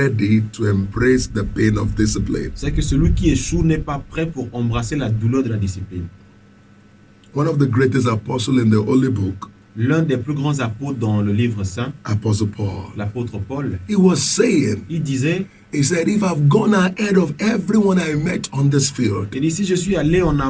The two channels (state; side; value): identical; both; correlation 1.00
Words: to embrace the pain of discipline. c'est que celui qui échoue n'est pas prêt pour embrasser la douleur de la discipline. One of the greatest apostles in the Holy Book, L'un des plus grands apôtres dans le livre saint, Apostle Paul, l'apôtre Paul, he was saying, il disait, he said, if I've gone ahead of everyone I met on this field, il dit, si je suis allé en